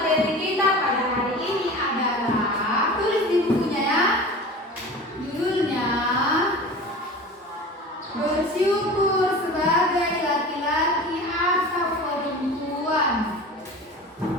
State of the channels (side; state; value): both; normal; correlation 0.36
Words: kita pada hari ini adalah, tulis di bukunya ya. Judulnya bersyukur sebagai laki-laki atau perempuan.